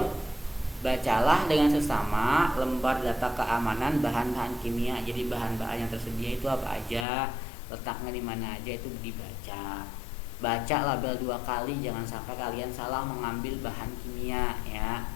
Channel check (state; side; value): drops out; right; at 7.1 s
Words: bacalah dengan sesama lembar data keamanan bahan-bahan kimia. Jadi bahan-bahan yang tersedia itu apa aja, letaknya di mana aja, itu dibaca. Baca label 2 kali, jangan sampai kalian salah mengambil bahan kimia ya.